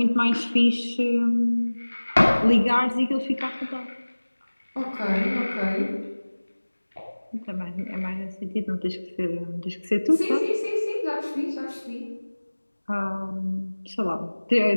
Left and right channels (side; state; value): both; inverted; correlation -1.00